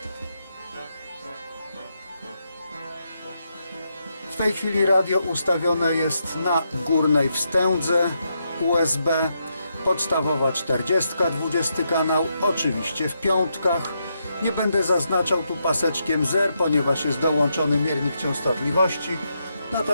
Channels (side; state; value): both; inverted; correlation -0.81